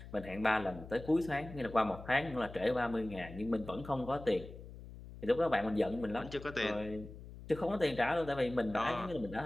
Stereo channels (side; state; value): left; noise; hum, 14 dB below the sound